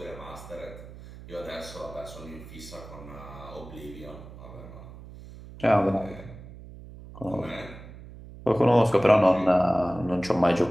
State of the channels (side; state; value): right; noise; hum, 16 dB below the sound